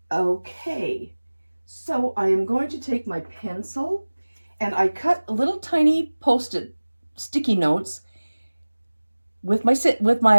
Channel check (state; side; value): inverted; both; correlation -1.00